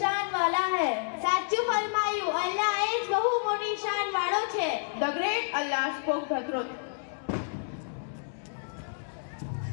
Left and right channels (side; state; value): right; silent; digital silence